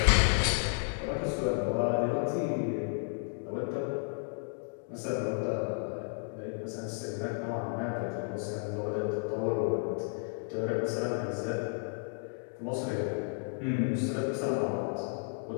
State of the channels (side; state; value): right; silent; 56 dB below the other